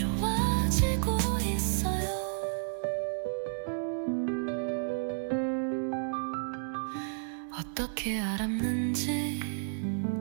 있어요. 어떻게 알았는지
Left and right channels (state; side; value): silent; left; 57 dB below the other